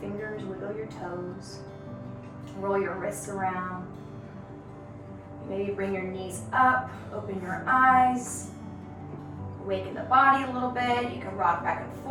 wiggle your toes, roll your wrists around. Maybe bring your knees up, open your eyes, awaken the body a little bit. You can rock back and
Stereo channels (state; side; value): identical; both; correlation 1.00